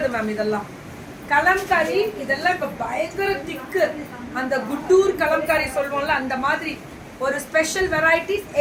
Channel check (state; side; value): identical; both; correlation 1.00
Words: மேம். இதெல்லாம் கலம்காரி. இதெல்லாம் இப்ப பயங்கர திக்கு. அந்த குட்டூர் கலம்காரி சொல்லுவோம்ல, அந்த மாதிரி ஒரு ஸ்பெஷல் வெரைட்டிஸ்.